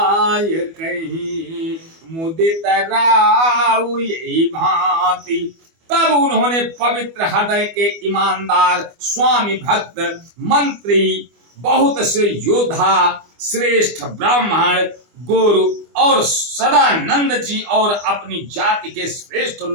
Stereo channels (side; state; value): left; late; 25 ms